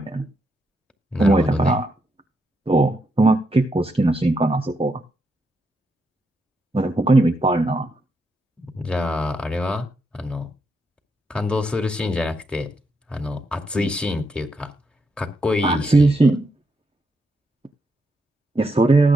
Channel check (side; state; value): both; normal; correlation 0.81